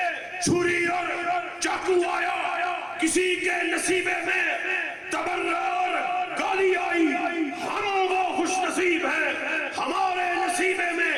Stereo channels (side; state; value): both; identical; correlation 1.00